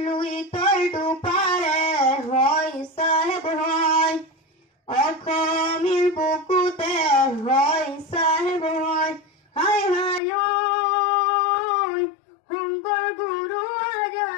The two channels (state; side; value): drops out; right; at 10.2 s